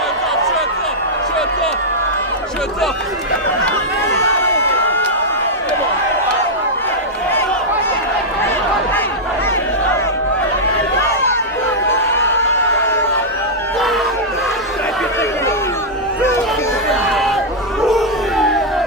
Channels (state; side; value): normal; both; correlation -0.07